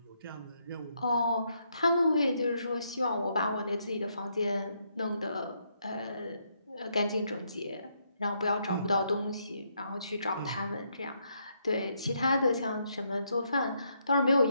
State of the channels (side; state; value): both; inverted; correlation -0.76